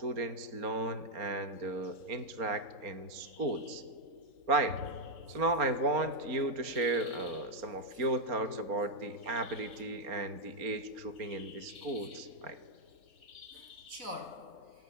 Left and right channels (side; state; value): left; late; 4.3 ms